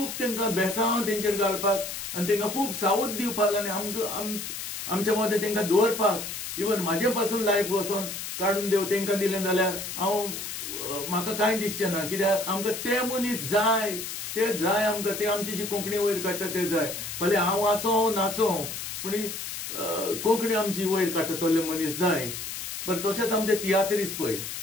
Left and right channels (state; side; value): noise; left; hiss, 7 dB below the sound